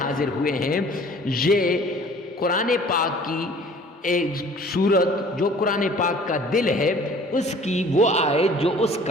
حاضر ہوئے ہیں، یہ قرآن پاک کی ایک سورت جو قرآن پاک کا دل ہے، اس کی وہ آیت جو اس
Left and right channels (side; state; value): both; normal; correlation 0.50